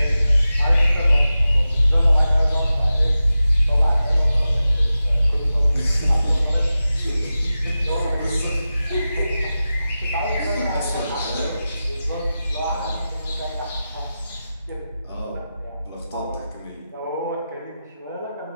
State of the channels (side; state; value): both; inverted; correlation -0.93